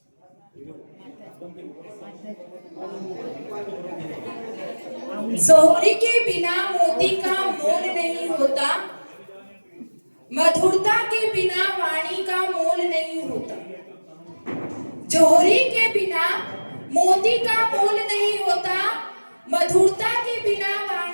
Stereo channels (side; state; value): both; inverted; correlation -1.00